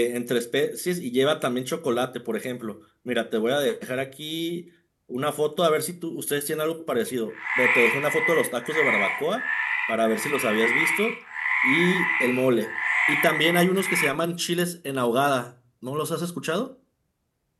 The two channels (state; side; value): identical; both; correlation 1.00